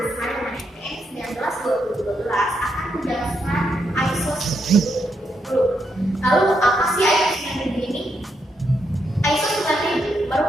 desain MNN 19-2012 akan menjelaskan ISO 9000. Lalu apa sih ISO 9000 ini? ISO 9000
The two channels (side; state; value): both; normal; correlation 0.80